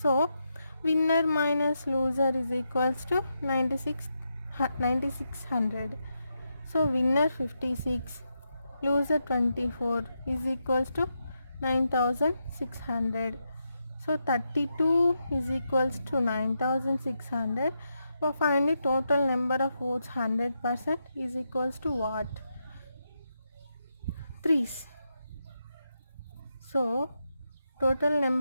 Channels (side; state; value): both; inverted; correlation -0.84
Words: winner minus loser is equals to 9600. So winner 56, loser 24 is equals to 9,600. So 32 is equals to 9,600. So find the total number of votes. 100% is equals to what? 3's. So total